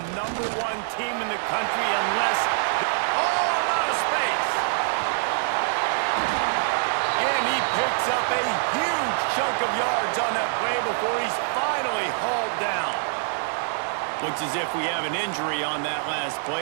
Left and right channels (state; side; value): silent; left; digital silence